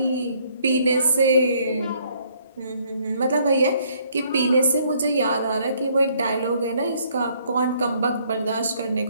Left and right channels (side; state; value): both; inverted; correlation -0.66